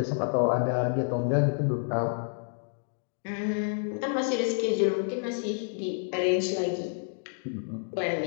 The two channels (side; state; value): right; silent; digital silence